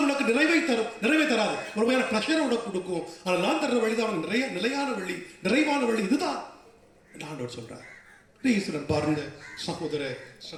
உனக்கு நிறைவை தரும், நிறைவே தராது, ஒரு மாதிரி பிரஷரை உனக்கு கொடுக்கும். ஆனால் நான் தர்ற வழிதான் உனக்கு நிலையான வழி, நிறைவான வழி. இதுதான் ஆண்டவர் சொல்றார். ஈஸ்வரன் பாருங்க சகோதர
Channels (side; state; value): both; identical; correlation 1.00